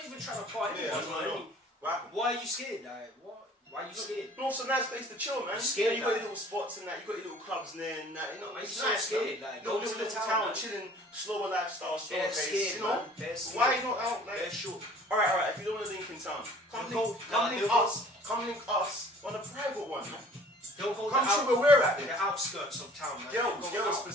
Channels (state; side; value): normal; both; correlation 0.51